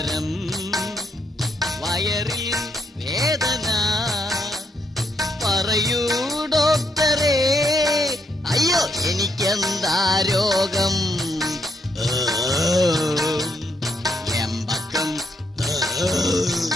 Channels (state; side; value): normal; both; correlation 0.76